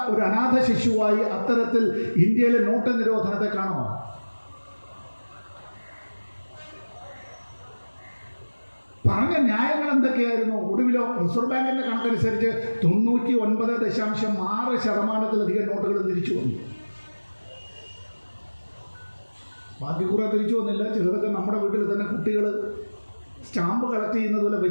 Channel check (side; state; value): both; inverted; correlation -1.00